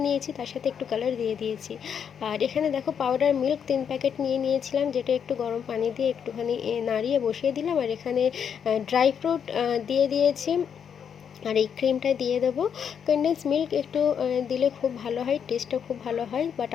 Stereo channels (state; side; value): quieter; right; 7.7 dB